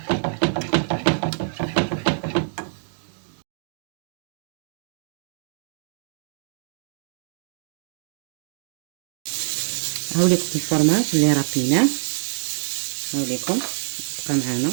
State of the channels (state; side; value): silent; left; digital silence